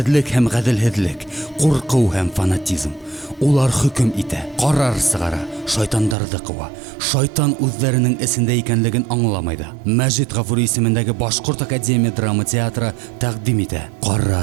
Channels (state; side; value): drops out; left; at 6.2 s